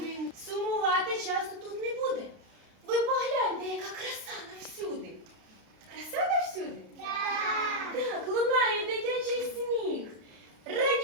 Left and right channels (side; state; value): left; late; 32 ms